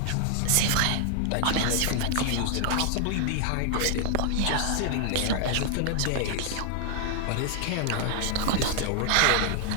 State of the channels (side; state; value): both; different; correlation 0.00